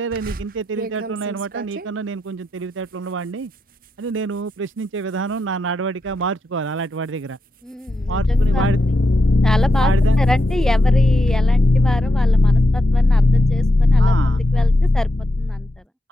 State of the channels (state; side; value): normal; both; correlation 0.85